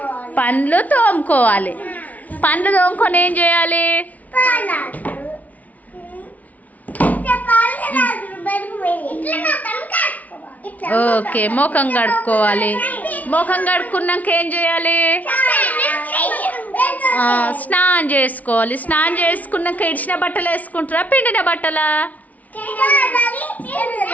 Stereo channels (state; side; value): late; right; 0.073 ms